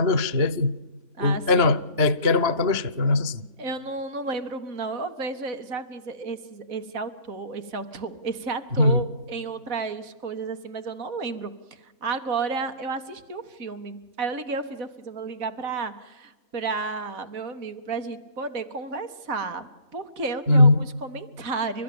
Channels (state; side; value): late; left; 3.0 ms